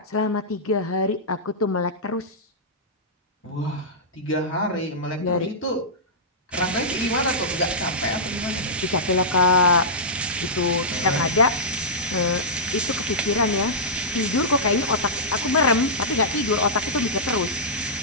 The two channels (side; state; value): both; normal; correlation -0.13